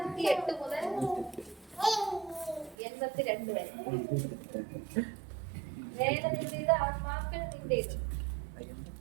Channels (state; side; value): drops out; left; at 2.8 s